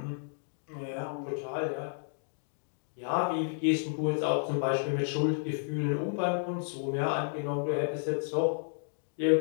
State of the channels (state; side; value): silent; right; digital silence